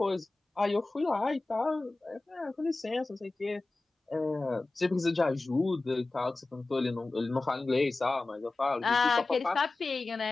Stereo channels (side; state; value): right; quieter; 3.3 dB